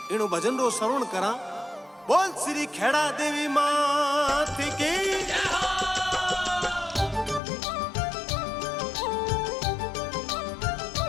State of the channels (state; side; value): drops out; right; at 7.4 s